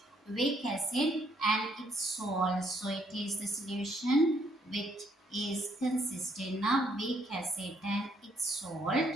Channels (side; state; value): both; normal; correlation 0.70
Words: weak acid and its salt. So it is the solution which is consisting of weak acid and its salt.